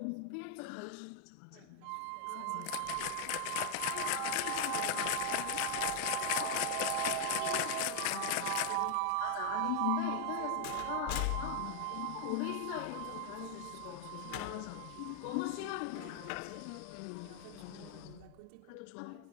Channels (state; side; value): different; both; correlation 0.00